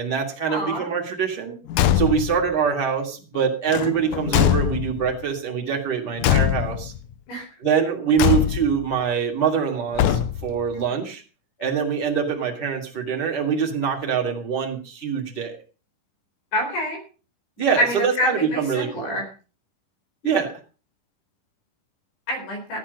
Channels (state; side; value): late; right; 10 ms